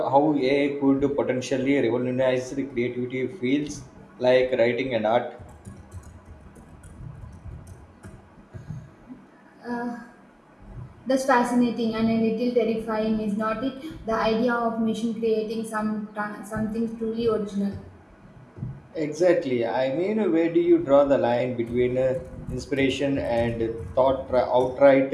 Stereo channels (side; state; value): both; identical; correlation 1.00